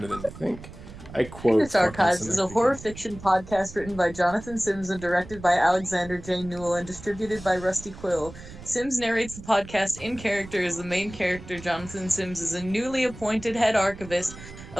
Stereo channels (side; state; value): right; noise; rumble, 15 dB below the sound